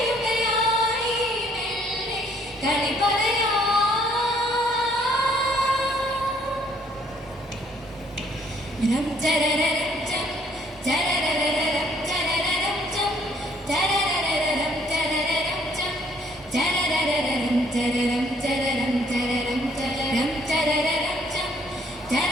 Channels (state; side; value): normal; both; correlation 0.64